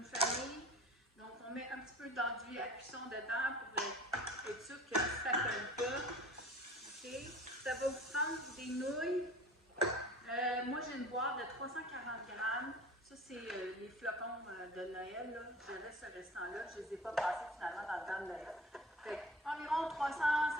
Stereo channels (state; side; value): normal; both; correlation 0.41